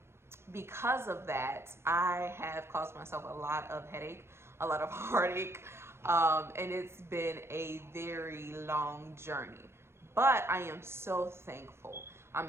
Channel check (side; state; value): left; late; 0.12 ms